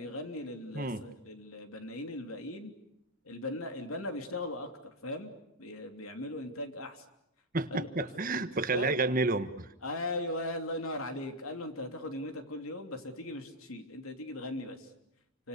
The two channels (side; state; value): both; normal; correlation 0.06